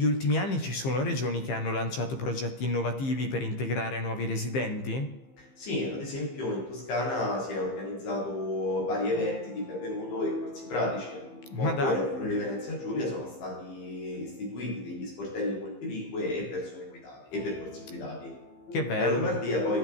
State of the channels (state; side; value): late; right; 15 ms